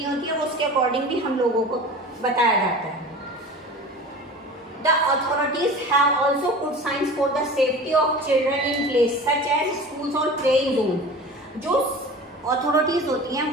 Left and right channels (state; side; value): normal; both; correlation 0.37